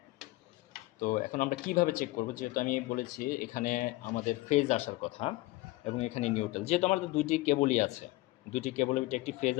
তো এখন আমরা কিভাবে চেক করব, যেহেতু আমি বলেছি এখানে আমাদের ফেজ আসার কথা এবং এখানে নিউট্রাল, যেহেতু আমাদের দুইটি কেবলই আছে, দুইটি কেবলের ভিতরে একটি ফেজ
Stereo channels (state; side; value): quieter; right; 19.6 dB